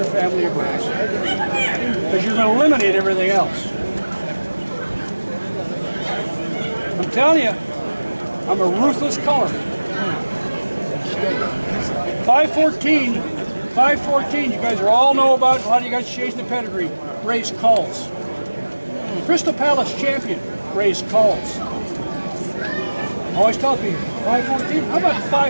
family of birds. Because you're going to eliminate everything else. I'm telling you, I'm a ruthless color. 514, you guys all know about, a lot of you guys chasing the pedigree, raised culls. Crystal Palace champion raised culls. I always tell people, 514? How about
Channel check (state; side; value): inverted; both; correlation -1.00